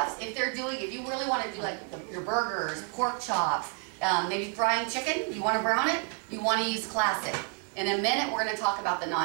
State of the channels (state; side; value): quieter; left; 35.5 dB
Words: if you really want to do like your burgers, pork chops, maybe frying chicken, you want to brown it, you want to use classic. In a minute, we're going to talk about the